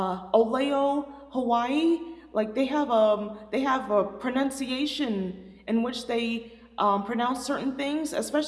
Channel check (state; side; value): identical; both; correlation 1.00